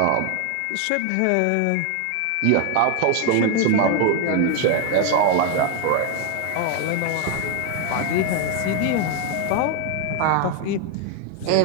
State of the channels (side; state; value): both; different; correlation 0.01